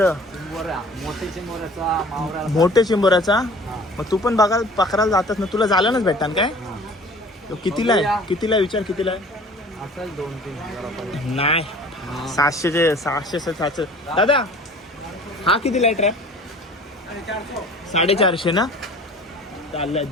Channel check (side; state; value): both; normal; correlation 0.47